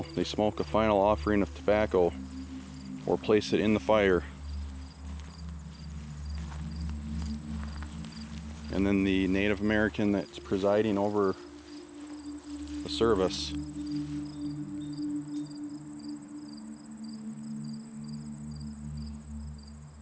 they smoke a final offering of tobacco or place it in the fire. And then the Native American that's presiding over the service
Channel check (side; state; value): both; identical; correlation 1.00